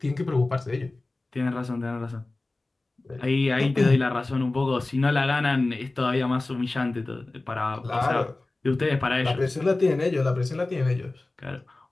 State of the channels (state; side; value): quieter; right; 3.1 dB